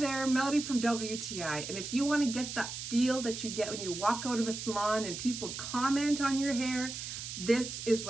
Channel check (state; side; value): noise; right; hiss, 7 dB below the sound